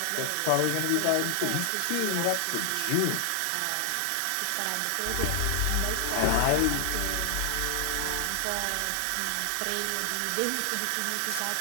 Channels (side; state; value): both; different; correlation 0.00